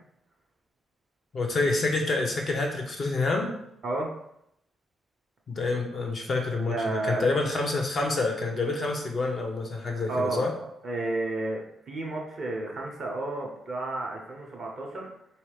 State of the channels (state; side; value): normal; both; correlation 0.79